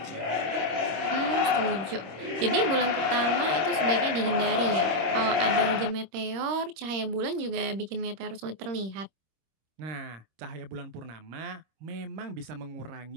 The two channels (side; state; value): left; late; 26 ms